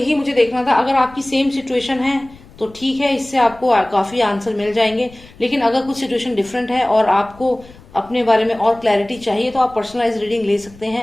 मुझे देखना था। अगर आपकी सेम सिचुएशन है तो ठीक है, इससे आपको काफी आंसर मिल जाएंगे। लेकिन अगर कुछ सिचुएशन डिफरेंट है और आपको अपने बारे में और क्लैरिटी चाहिए तो आप पर्सनलाइज रीडिंग ले सकते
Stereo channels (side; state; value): left; noise; rumble, 23 dB below the sound